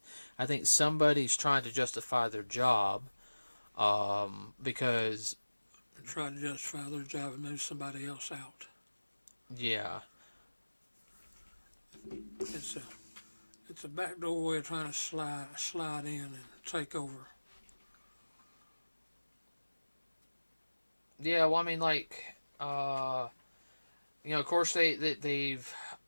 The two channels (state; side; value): inverted; both; correlation -1.00